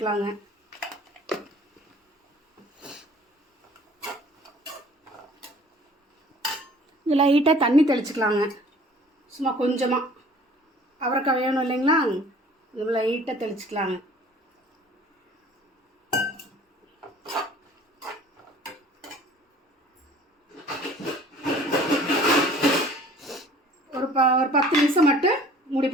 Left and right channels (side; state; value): both; normal; correlation 0.51